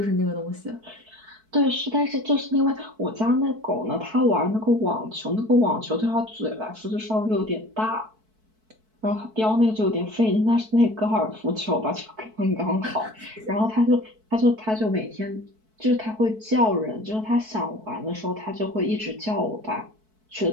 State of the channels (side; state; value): left; late; 4.6 ms